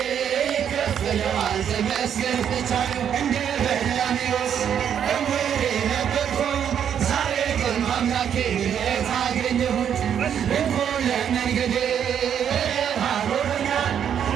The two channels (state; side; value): quieter; left; 8.7 dB